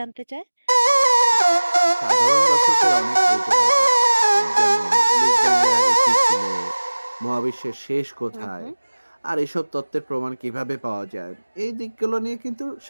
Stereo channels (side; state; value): both; inverted; correlation -1.00